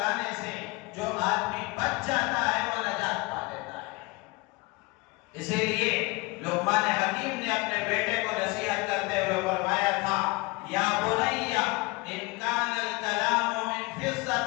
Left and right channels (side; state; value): right; quieter; 25.2 dB